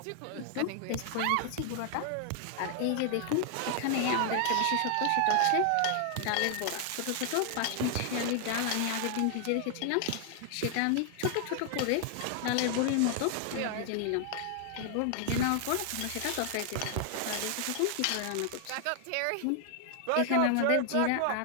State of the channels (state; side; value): different; both; correlation 0.00